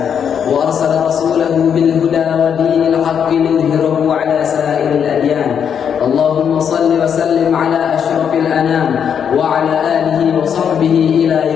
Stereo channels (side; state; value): right; quieter; 7.8 dB